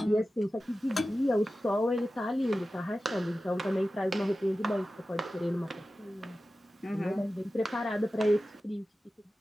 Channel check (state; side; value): normal; both; correlation 0.94